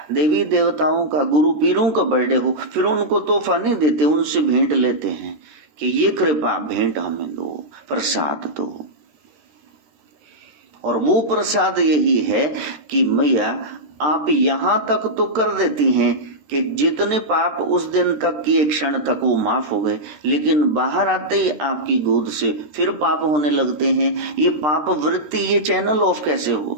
देवी देवताओं का, गुरु पीरों का बर्थडे हो, फिर उनको तोहफा नहीं देते, उनसे भेंट लेते हैं कि ये कृपा भेंट हमें दो, प्रसाद दो। और वो प्रसाद यही है कि मैया आप यहां तक तो कर देती हैं कि जितने पाप उस दिन तक किए क्षण तक वो माफ हो गए, लेकिन बाहर आते ही आपकी गोद से फिर पाप होने लगते हैं। ये पाप वृत्ति, ये चैनल ऑफ कैसे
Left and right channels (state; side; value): late; left; 13 ms